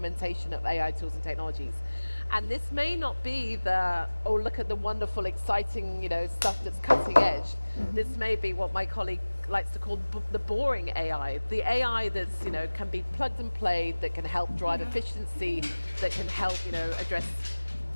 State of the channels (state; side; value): inverted; both; correlation -1.00